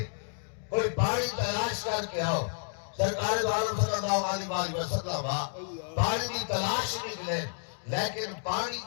کوئی پانی تلاش کر کے آؤ سرکار دو عالم صلی اللہ علیہ وسلم پانی کی تلاش نکلے لیکن پانی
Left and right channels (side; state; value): right; silent; digital silence